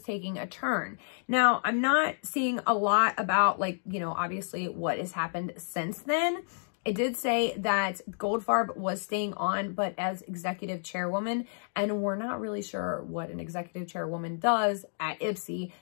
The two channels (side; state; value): right; silent; digital silence